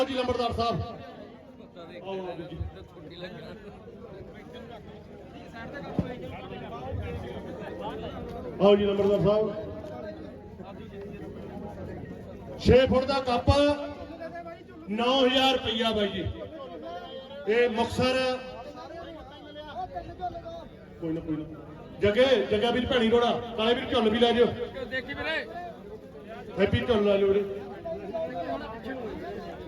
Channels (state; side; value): identical; both; correlation 1.00